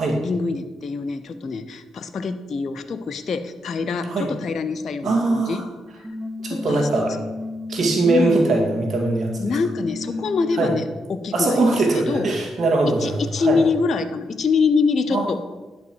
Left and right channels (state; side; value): normal; both; correlation 0.79